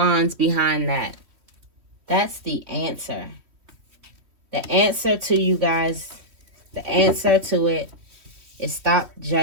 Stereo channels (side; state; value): left; late; 3.1 ms